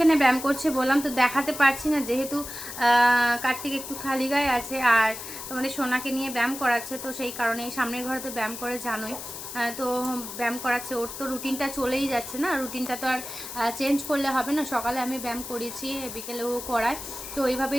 ব্যায়াম করছে বললাম, তো দেখাতে পারছি না যেহেতু কার্তিক একটু খালি গায়ে আছে, আর তোমাদের সোনাকে নিয়ে ব্যায়াম করাচ্ছে, তো সেই কারণে সামনের ঘরে তো ব্যায়াম করে জানোই। তো ব্যায়াম করাচ্ছে, ওর তো রুটিনটা চলেই যাচ্ছে না, রুটিনটা তো আর চেঞ্জ করলে হবে না। সকালে আমি ব্যায়াম করিয়েছি, বিকেলেও করায়, তো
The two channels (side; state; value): left; noise; hiss, 9 dB below the sound